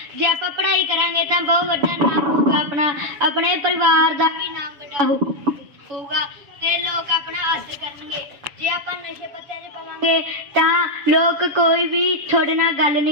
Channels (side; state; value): left; late; 7.0 ms